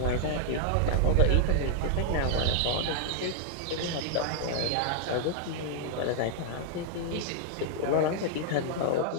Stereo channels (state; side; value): different; both; correlation -0.01